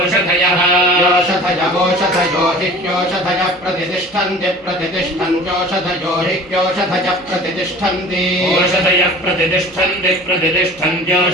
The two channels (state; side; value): noise; right; hum, 26 dB below the sound